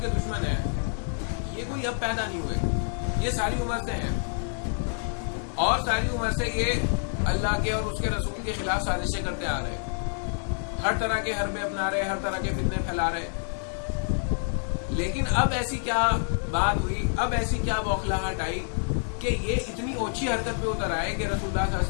کے دشمن ہیں، یہ کوئی اب پیدا نہیں ہوئے، یہ ساری عمر سے ہیں، اور ساری عمر سے یہ اللہ کے اور اس کے رسول کے خلاف سازشیں کرتے آ رہے، ہر طرح کے حربے اپنا رہے، ہر طرح کے فتنے پھیلا رہے. لیکن اب ایسی کیا بات ہوئی، اب ایسی کیا بوکھلاہٹ آئی کہ یہ اتنی اوچھی حرکت پہ اتر آئے کہ رسول اللہ صلی اللہ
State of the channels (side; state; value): right; silent; 60 dB below the other